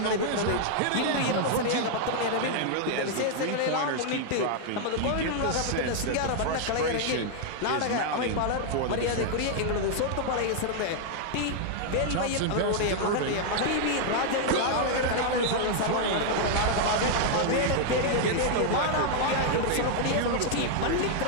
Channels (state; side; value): different; both; correlation 0.00